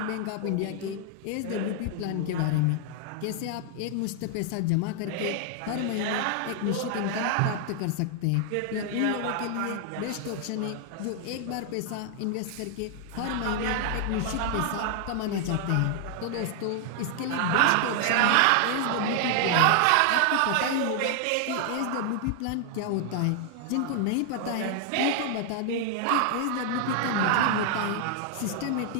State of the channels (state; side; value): different; both; correlation 0.00